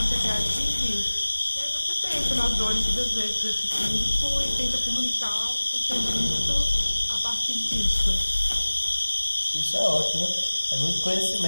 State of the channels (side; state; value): both; inverted; correlation -1.00